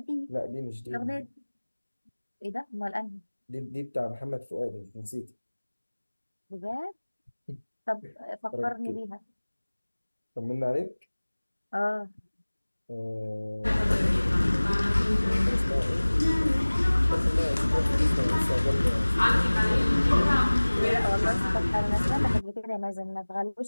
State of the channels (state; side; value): inverted; both; correlation -1.00